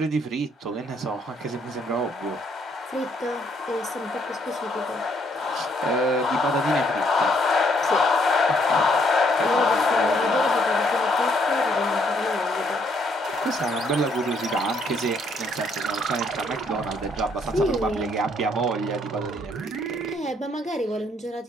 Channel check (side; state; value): both; normal; correlation 0.69